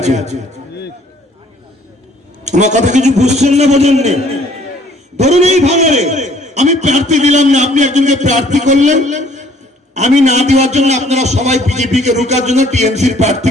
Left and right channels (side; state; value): both; normal; correlation 0.59